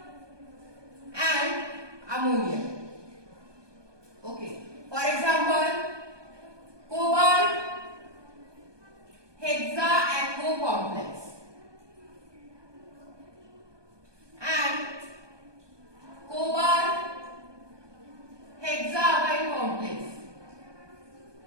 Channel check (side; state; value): left; late; 1.2 ms